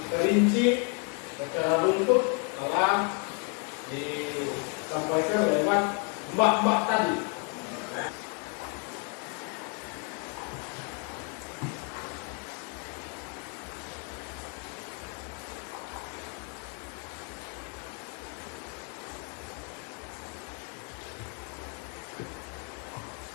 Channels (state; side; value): quieter; right; 36.0 dB